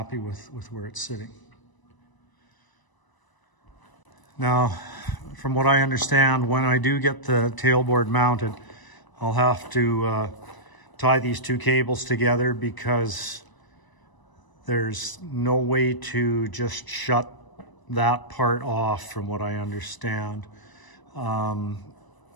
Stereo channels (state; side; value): late; right; 1.0 ms